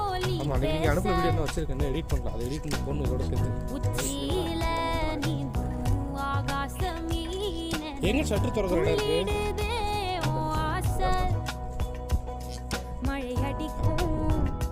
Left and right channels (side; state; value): both; identical; correlation 1.00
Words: ஆமாம், அன்றைக்கி நீங்கள் அனுப்புகிற வீடியோ என்ன வச்சுருக்கேன், எடிட் பண்ணலாம். அதை எடிட் பண்ணி பொண்ணு இதோட சேர்த்து எங்கே ஷட்டர் திறக்கிற இடம் இருக்குது. மழை அடிக்கும்